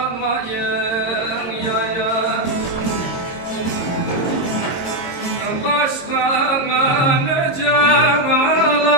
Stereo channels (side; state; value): right; late; 22 ms